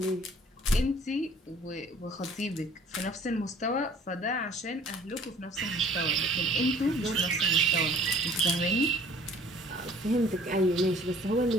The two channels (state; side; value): normal; both; correlation 0.53